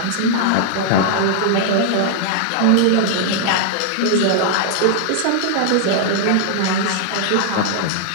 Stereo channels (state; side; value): different; both; correlation -0.01